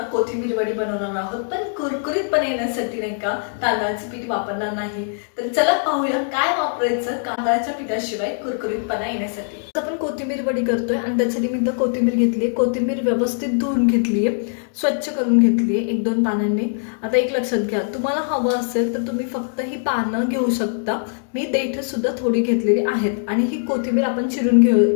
कोथिंबीर वडी बनवणार आहोत, पण कुरकुरीतपणे येण्यासाठी नाही का तांदळाचे पीठ वापरणार नाही। तर चला पाहूया काय वापरायचं तांदळाच्या पिठाशिवाय कुरकुरीतपणा येण्यासाठी। आपण कोथिंबीर वडी करतोय आणि त्यासाठी मी इथं कोथिंबीर घेतली। कोथिंबीर व्यवस्थित धुवून घेतली आहे, स्वच्छ करून घेतली आहे 1-2 पानांनी। आता एक लक्षात घ्या, तुम्हाला हवं असेल तर तुम्ही फक्त ही पानं घेऊ शकता। मी देठ सुद्धा थोडी घेतलेली आहेत आणि ही कोथिंबीर आपण चिरून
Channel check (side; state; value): right; silent; 63 dB below the other